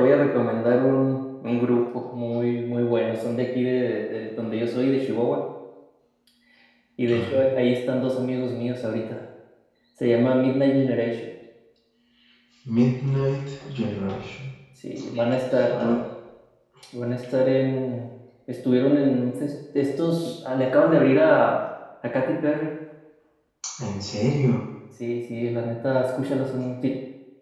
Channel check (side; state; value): both; identical; correlation 1.00